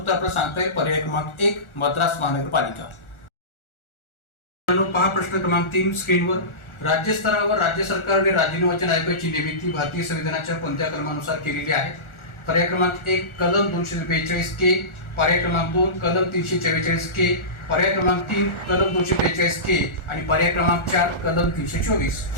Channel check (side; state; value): right; late; 1.4 ms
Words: आपल्याला सांगता येईल पर्याय क्रमांक 1 मद्रास महानगरपालिका. पहा प्रश्न क्रमांक 3 स्क्रीनवर. राज्य स्तरावर राज्य सरकारने राज्य निर्वाचन आयोगाची निर्मिती भारतीय संविधानाच्या कोणत्या कलमानुसार केलेली आहे? पर्याय क्रमांक 1 कलम 242 के, पर्याय क्रमांक 2 कलम 344 के, पर्याय क्रमांक 3 कलम 243 के आणि पर्याय क्रमांक 4 कलम 324.